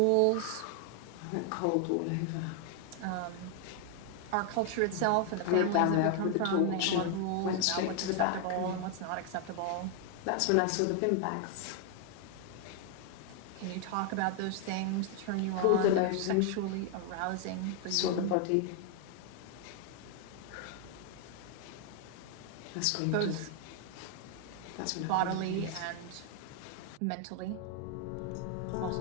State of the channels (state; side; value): different; both; correlation 0.00